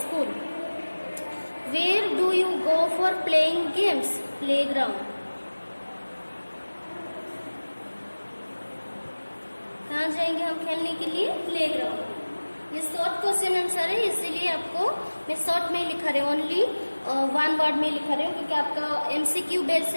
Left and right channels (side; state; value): both; inverted; correlation -1.00